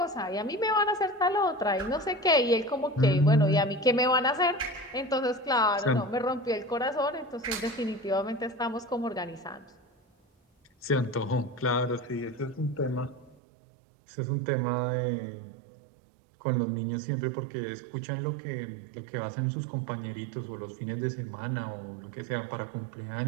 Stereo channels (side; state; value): left; drops out; at 13.4 s